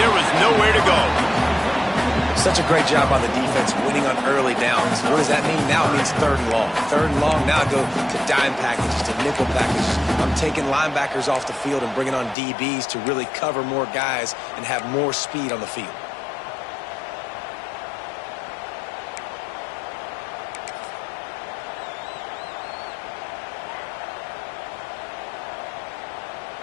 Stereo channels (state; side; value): drops out; right; at 12.4 s